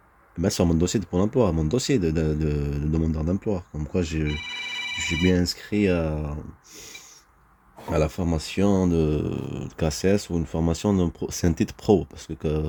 Ben, sur mon dossier de Pôle emploi, mon dossier de demandeur d'emploi. Comme quoi, je suis bien inscrit à la formation de KCS ou une formation c'est un titre pro parce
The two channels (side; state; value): both; identical; correlation 1.00